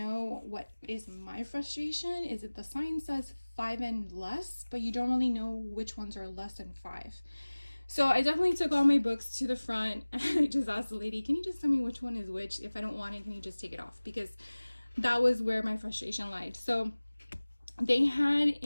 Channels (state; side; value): inverted; both; correlation -1.00